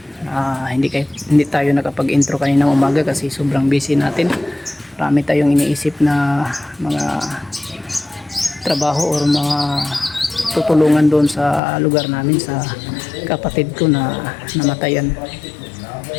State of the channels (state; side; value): drops out; right; at 11.6 s